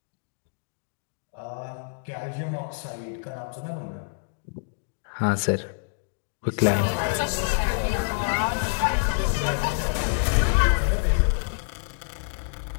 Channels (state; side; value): silent; right; digital silence